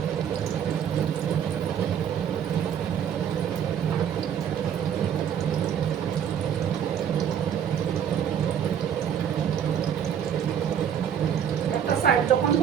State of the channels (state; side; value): quieter; left; 8.8 dB